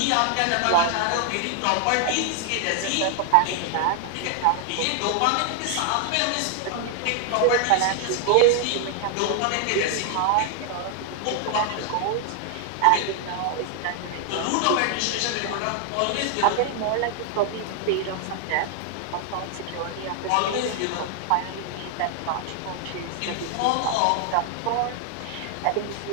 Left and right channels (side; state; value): both; different; correlation 0.00